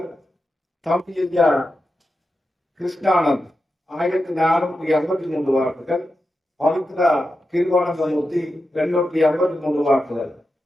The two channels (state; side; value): normal; both; correlation 0.89